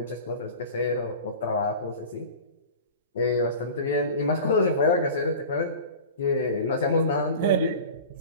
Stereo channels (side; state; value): both; inverted; correlation -0.36